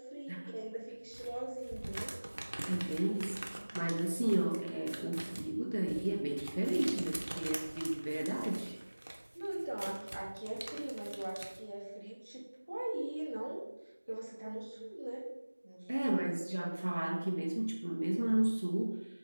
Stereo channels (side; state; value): both; inverted; correlation -1.00